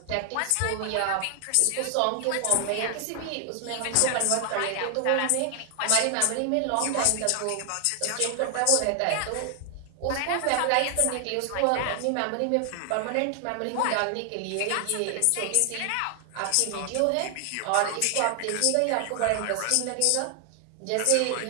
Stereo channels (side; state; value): both; different; correlation 0.00